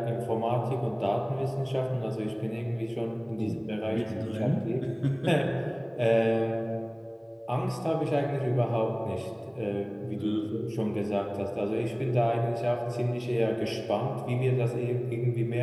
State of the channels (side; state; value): both; identical; correlation 1.00